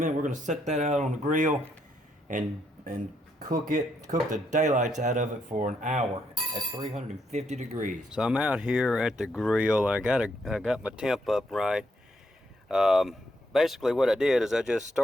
We're gonna set that out on the grill, and cook the daylights out of it for an hour at 350 degrees. So I'm out here at the grill. I got my temp up right. Basically what I did is I just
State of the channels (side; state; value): both; normal; correlation 0.76